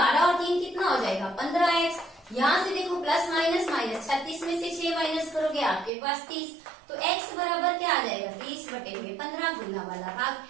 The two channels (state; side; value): drops out; left; at 5.9 s